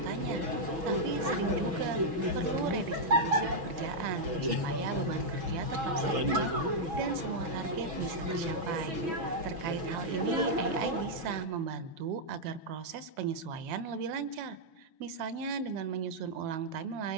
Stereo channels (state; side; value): late; left; 6.2 ms